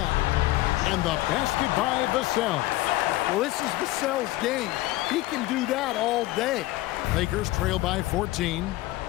And the basket by Vassell. Well, this is Vassell's game. He can do that all day. Lakers trail by 14.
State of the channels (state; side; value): quieter; right; 17.6 dB